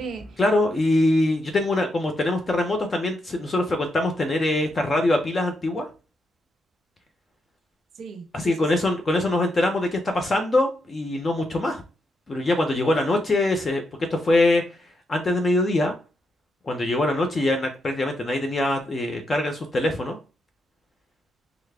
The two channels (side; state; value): both; normal; correlation 0.82